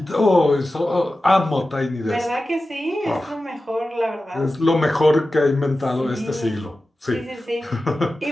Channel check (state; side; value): normal; both; correlation 0.94